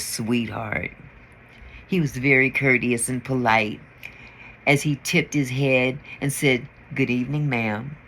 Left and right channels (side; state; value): both; identical; correlation 1.00